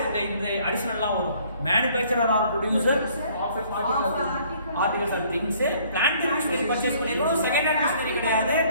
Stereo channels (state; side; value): inverted; both; correlation -0.59